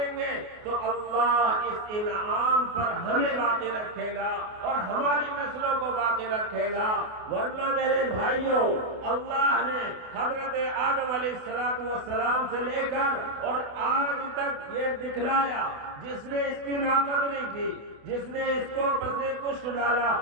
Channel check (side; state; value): left; late; 28 ms